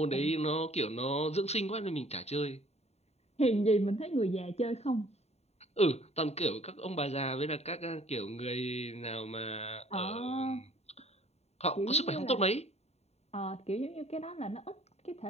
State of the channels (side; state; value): right; late; 0.31 ms